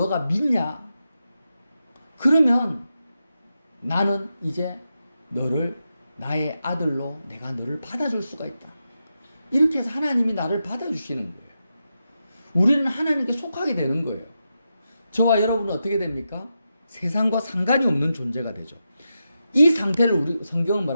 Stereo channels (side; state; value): both; inverted; correlation -0.88